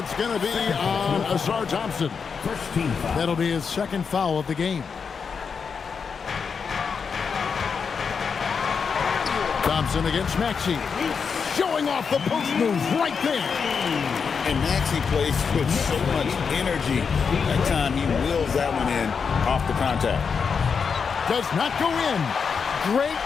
going to be on Ausar Thompson. First team foul. That'll be his second foul of the game. Thompson against Maxey. Showing off the post moves right there. And Maxey plays with so much energy. That time he wheels that one in off the contact. Does not go in. Great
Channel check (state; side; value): quieter; right; 5.9 dB